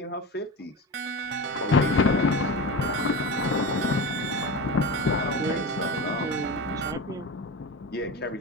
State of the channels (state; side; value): normal; both; correlation 0.27